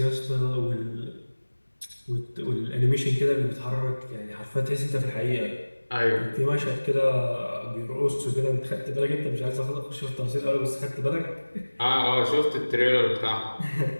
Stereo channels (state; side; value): inverted; both; correlation -1.00